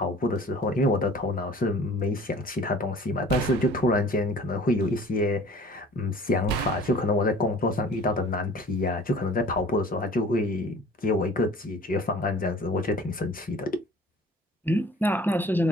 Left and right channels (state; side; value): normal; both; correlation 0.47